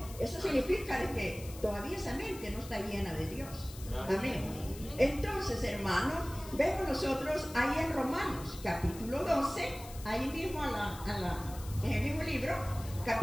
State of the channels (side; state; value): left; noise; hiss, 16 dB below the sound